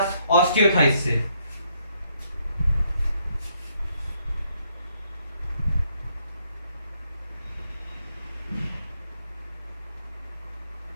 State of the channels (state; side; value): inverted; both; correlation -0.72